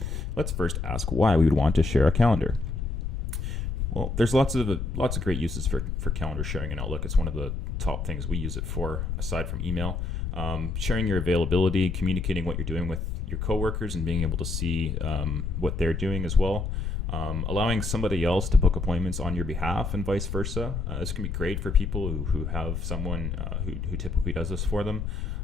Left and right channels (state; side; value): noise; left; rumble, 3 dB below the sound